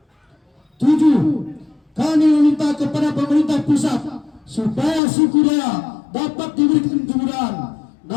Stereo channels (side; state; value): right; drops out; at 5.0 s